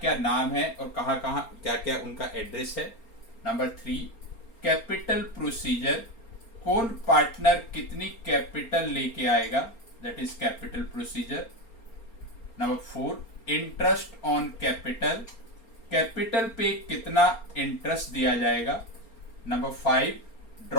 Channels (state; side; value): late; right; 4.3 ms